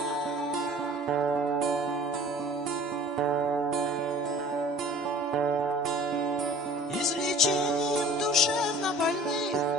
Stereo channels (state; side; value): normal; both; correlation 0.47